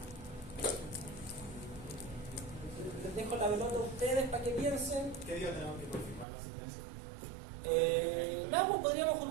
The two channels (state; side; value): drops out; left; at 6.2 s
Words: Les dejo la pelota a ustedes para que piensen. ¿Qué día tenemos que confirmar la asistencia? Nada, pues podríamos